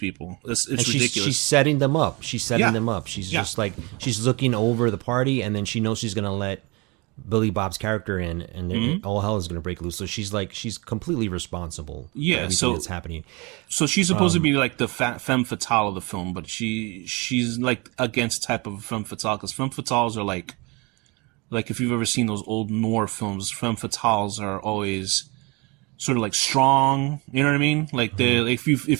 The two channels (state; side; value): quieter; left; 27.3 dB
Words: It's ridiculous. She's setting them up. She's just like, she's looking over the party, and then she knows she's going to let Billy Bob's character in, and all hell is going to break loose. So she's completely responsible for everything that's happening. So she's supposed to be like the femme fatale of the film, but she's like against type of femme fatale, because femme fatales are like like if you've ever seen those old noir films, femme fatales are always sort of like strong. You know what I mean? Like if